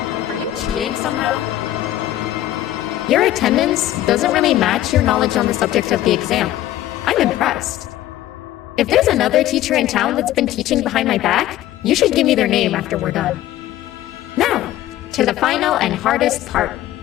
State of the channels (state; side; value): quieter; right; 14.0 dB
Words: Are you cheating somehow? Your attendance doesn't really match your knowledge on the subject of the exam. I'm impressed. If there's another teacher in town that's been teaching behind my back, you should give me their name after we're done. Now, to the final and hardest part.